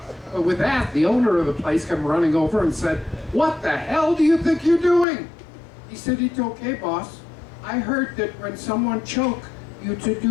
But with that, the owner of the place came running over and said, "What the hell do you think you're doing?" He said, "It's okay, boss. I heard that when someone choked, you to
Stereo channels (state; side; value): drops out; right; at 5.1 s